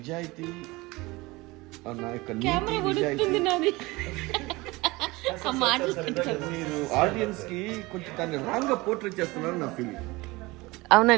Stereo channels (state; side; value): quieter; left; 22.1 dB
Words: నా యొక్క కెమెరా కొడుతుంది నాది. మీరు ఆడియన్స్ కి కొంచెం దాన్ని రాంగ్ గా పోర్ట్రేట్ చేస్తున్నారు నా ఫీలింగ్.